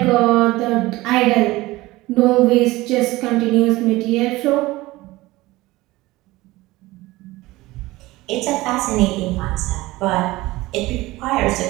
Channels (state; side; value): quieter; left; 19.2 dB